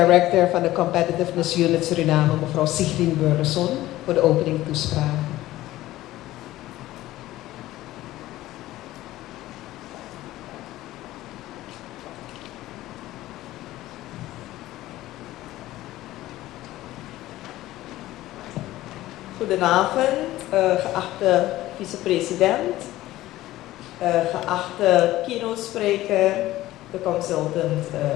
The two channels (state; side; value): quieter; right; 15.9 dB